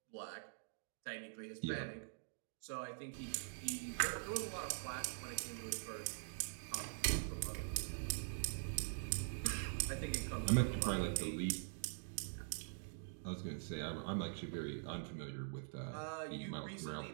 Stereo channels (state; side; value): silent; left; digital silence